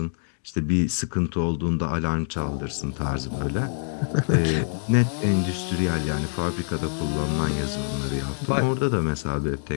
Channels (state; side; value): silent; right; digital silence